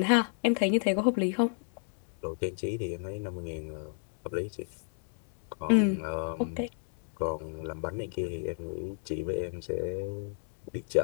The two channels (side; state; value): right; silent; digital silence